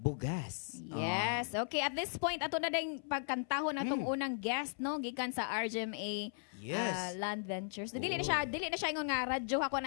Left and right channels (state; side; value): silent; right; 53 dB below the other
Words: Yes. Okay, at this point ato na ding pagkantahon atong unang guest no gikan sa RGMA Yes. Land Ventures. Dili na siya ingon nga radyo ako